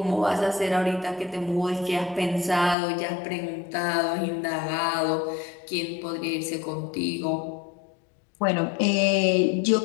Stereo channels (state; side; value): drops out; right; at 2.8 s